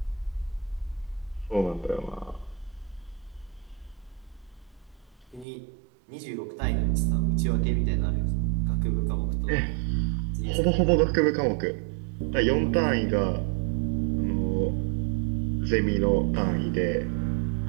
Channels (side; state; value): left; drops out; at 5.5 s